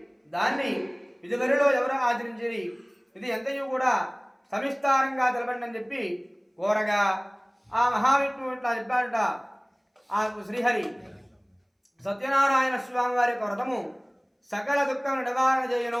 దాన్ని ఇదివరలో ఎవరు ఆచరించేది, ఇది ఎంతయూ కూడా సవిస్తారంగా తెలపండి అని చెప్పి కోరగా ఆ మహావిష్ణువు ఇట్లా చెప్పాడట. ఆ శ్రీహరి సత్యనారాయణ స్వామి వారి యొక్క వ్రతము సకల దుఃఖములు నివారణ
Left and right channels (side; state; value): both; identical; correlation 1.00